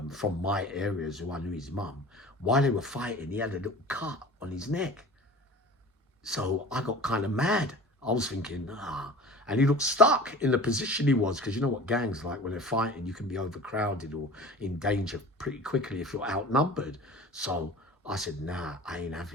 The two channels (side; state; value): both; normal; correlation 0.39